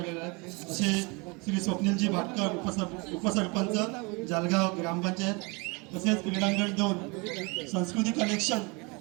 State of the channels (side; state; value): left; quieter; 28.6 dB